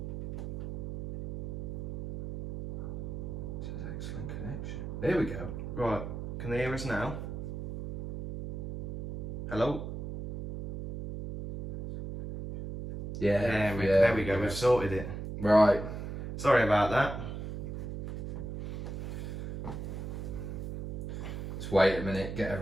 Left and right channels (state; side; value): noise; right; hum, 6 dB below the sound